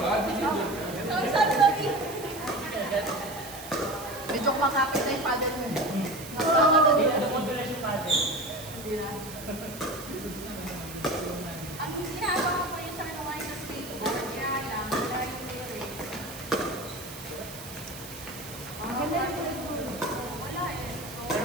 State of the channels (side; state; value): right; noise; hiss, 13 dB below the sound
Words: Sorry. Medyo makakit na yung paddle mo. Nakasama na dito. Nakudulas yung paddle. Hindi na. Ang ginagawa ko yun sa ano ngayon sa skateboard, kaya lang, dahil theory. Ang ganda yung Wala eh.